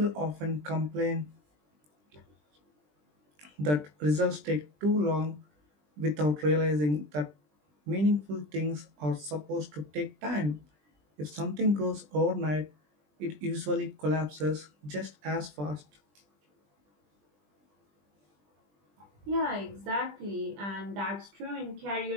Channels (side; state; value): left; late; 20 ms